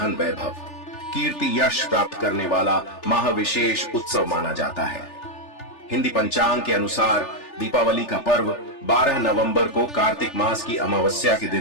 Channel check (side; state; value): right; late; 3.4 ms